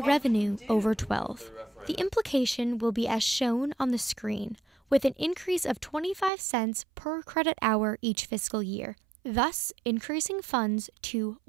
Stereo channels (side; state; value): left; drops out; at 6.3 s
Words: over 12. The implication will be as shown on the screen, with an increase of 25 cents per credit hour each fiscal year, thus increasing funds to